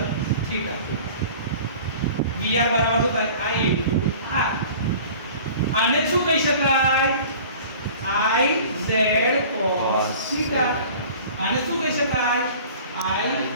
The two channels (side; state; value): both; inverted; correlation -0.44